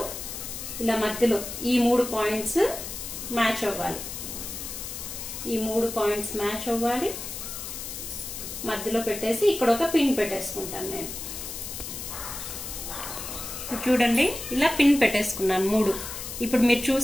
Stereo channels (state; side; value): noise; left; hiss, 8 dB below the sound